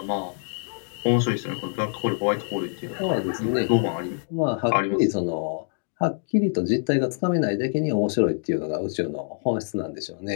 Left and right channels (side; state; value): right; silent; digital silence